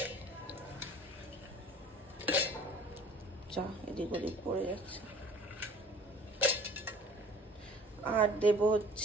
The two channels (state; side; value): normal; both; correlation 0.49